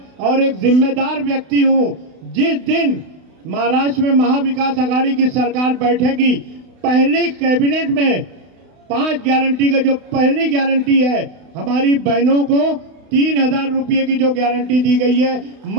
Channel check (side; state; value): left; late; 32 ms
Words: और एक जिम्मेदार व्यक्ति हूं। जिस दिन महाराष्ट्र में महाविकास आघाड़ी की सरकार बैठेगी, पहली कैबिनेट में 5 गारंटी का जो पहली गारंटी है, हमारी बहनों को 3,000 रुपये की जो गारंटी दी गई है,